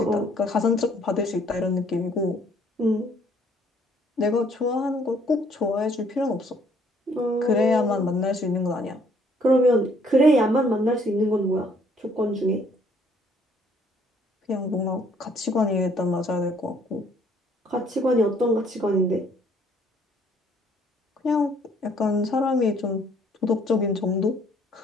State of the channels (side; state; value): both; normal; correlation 0.63